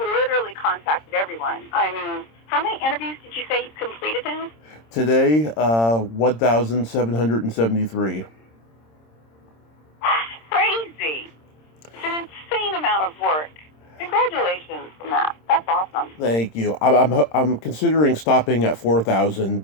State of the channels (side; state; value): right; late; 26 ms